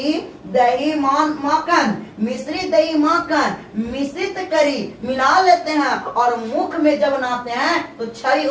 दही माखन, मिश्री दही माखन मिश्रित करी मिला लेते हैं और मुख में जब नाते हैं तो छवि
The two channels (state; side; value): identical; both; correlation 1.00